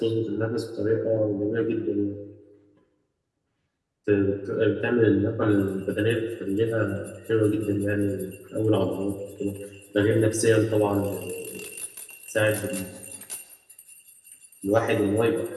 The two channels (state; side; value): identical; both; correlation 1.00